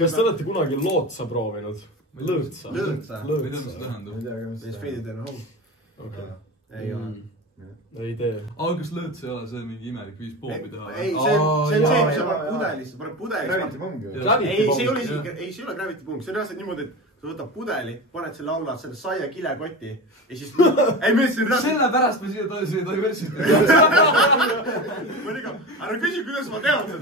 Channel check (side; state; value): both; normal; correlation 0.27